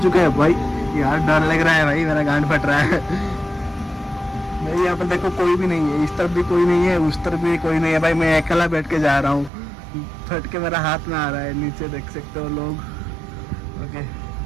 हैं भाई। यार डर लग रहा है भाई, मेरा गांड फट रहा है भाई। यहाँ पर देखो कोई भी नहीं है, इस तरफ भी कोई नहीं है, उस तरफ भी कोई नहीं है भाई। मैं अकेला बैठ के जा रहा हूँ, फट के मेरा हाथ में आ रहा है। नीचे देख सकते हो लोग। ओके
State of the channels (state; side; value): drops out; left; at 9.5 s